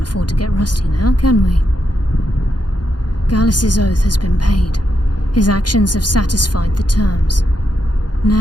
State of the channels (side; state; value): right; late; 0.69 ms